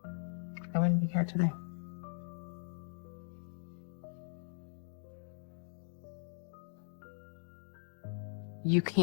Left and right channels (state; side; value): silent; right; digital silence